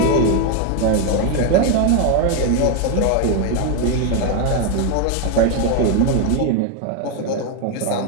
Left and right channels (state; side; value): different; both; correlation 0.01